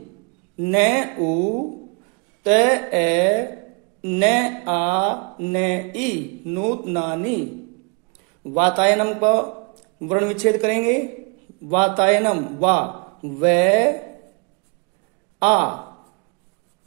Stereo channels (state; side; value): quieter; left; 32.8 dB